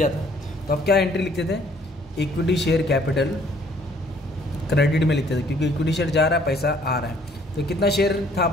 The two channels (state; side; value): normal; both; correlation 0.61